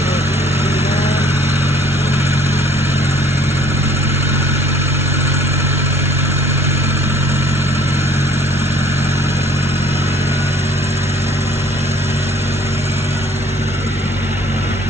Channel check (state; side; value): normal; both; correlation 0.56